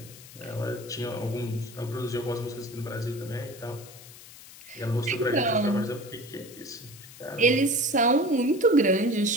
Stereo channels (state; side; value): noise; left; hiss, 18 dB below the sound